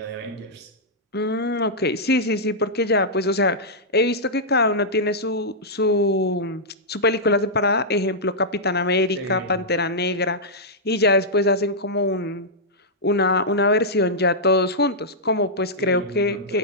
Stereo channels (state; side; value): normal; both; correlation -0.10